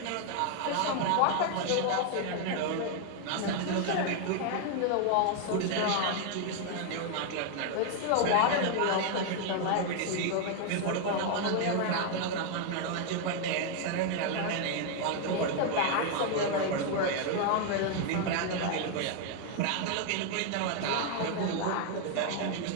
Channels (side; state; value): both; different; correlation 0.00